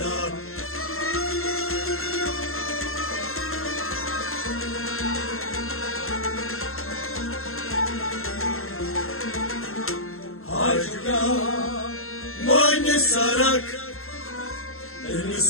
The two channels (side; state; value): right; late; 0.62 ms